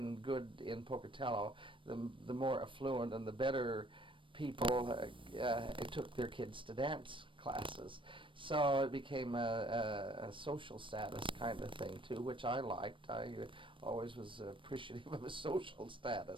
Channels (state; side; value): late; left; 0.25 ms